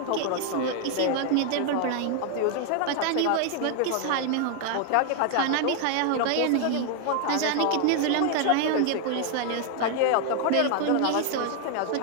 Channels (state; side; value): different; both; correlation 0.00